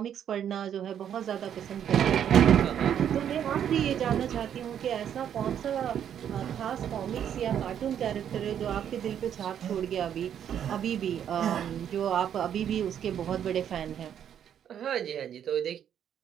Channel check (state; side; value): quieter; left; 9.3 dB